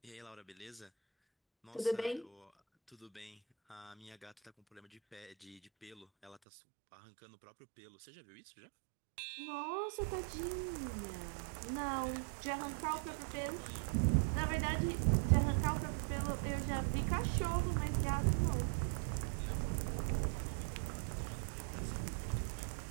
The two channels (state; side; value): drops out; left; at 6.4 s